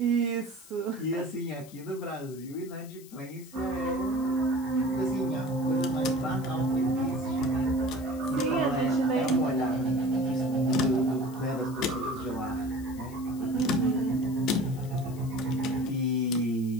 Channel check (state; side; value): noise; left; hiss, 21 dB below the sound